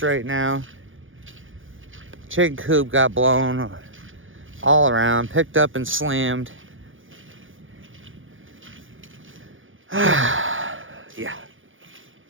right now. Chicken coop got blown all around, picked up and slammed. Yeah.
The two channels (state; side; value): late; left; 0.58 ms